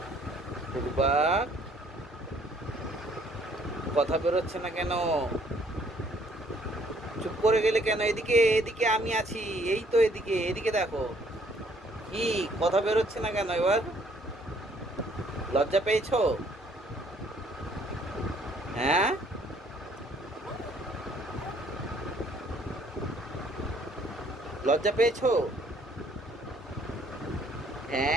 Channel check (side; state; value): both; normal; correlation 0.63